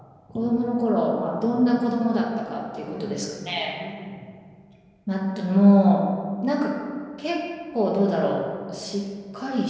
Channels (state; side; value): identical; both; correlation 1.00